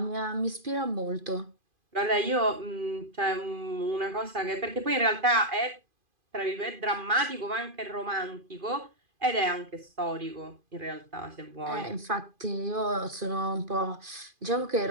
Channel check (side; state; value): left; late; 2.5 ms